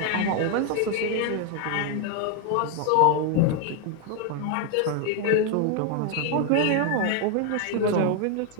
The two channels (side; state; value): both; different; correlation 0.01